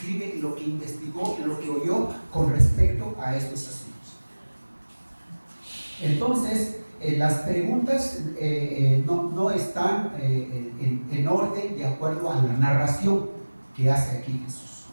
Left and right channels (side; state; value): both; inverted; correlation -1.00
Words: lo que investigó, lo que oyó con respecto a estos asuntos. Entonces, las preguntas no están en orden de acuerdo a la narración que hace aquí Jesús.